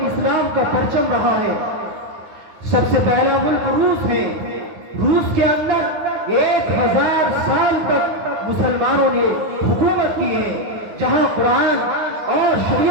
اسلام کا پرچم رہا ہے۔ سب سے پہلا ملک روس ہے۔ روس کے اندر 1000 سال تک مسلمانوں نے حکومت کی ہے، جہاں قرآن اور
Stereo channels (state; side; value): late; left; 9.5 ms